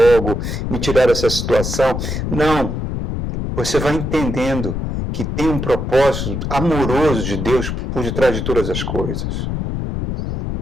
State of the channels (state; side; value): noise; left; rumble, 3 dB below the sound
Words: me tirar dessa situação? Não, você vai entendendo que tem um propósito amoroso de Deus por detrás de todas as coisas,